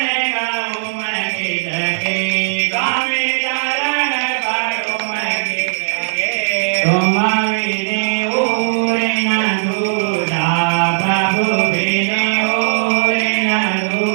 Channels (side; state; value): left; silent; 61 dB below the other